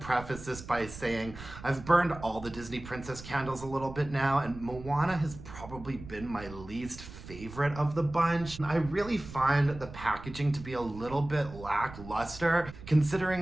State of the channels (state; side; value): noise; right; rumble, 14 dB below the sound